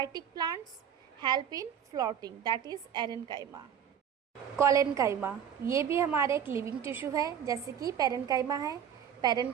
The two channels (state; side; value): quieter; left; 8.6 dB